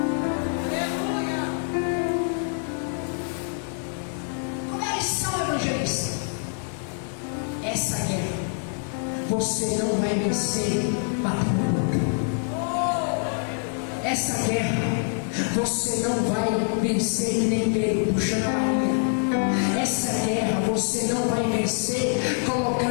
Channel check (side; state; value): right; silent; 55 dB below the other